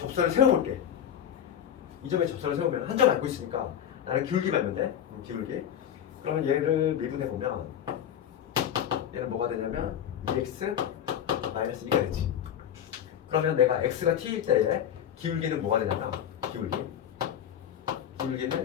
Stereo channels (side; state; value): right; quieter; 9.6 dB